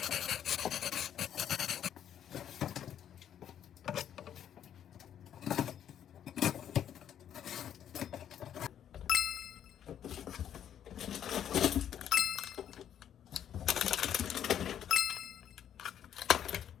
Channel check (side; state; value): right; quieter; 9.8 dB